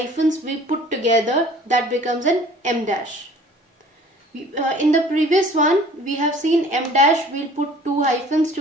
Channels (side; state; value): both; normal; correlation 0.50